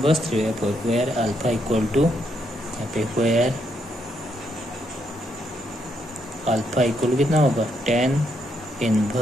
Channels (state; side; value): normal; both; correlation 0.76